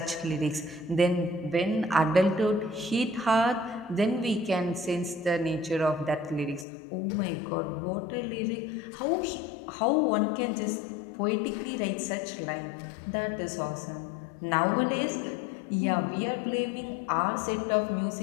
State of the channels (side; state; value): right; drops out; at 6.7 s